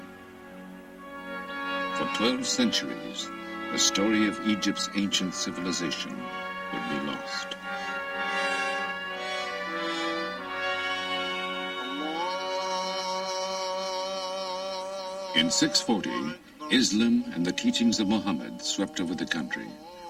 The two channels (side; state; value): both; identical; correlation 1.00